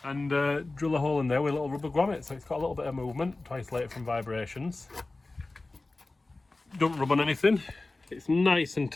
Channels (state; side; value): quieter; right; 3.2 dB